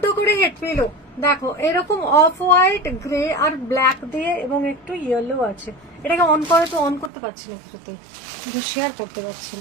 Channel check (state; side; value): drops out; left; at 7.1 s